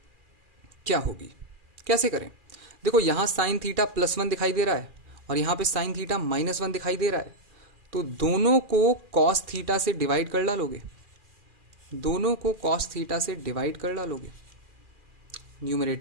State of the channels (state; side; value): late; left; 2.4 ms